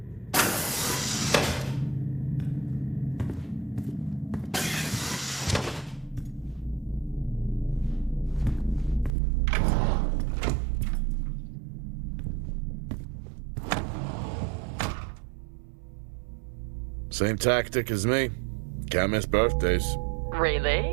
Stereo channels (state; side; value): drops out; left; at 9.1 s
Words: Same tactic as me. Can't miss birthdays.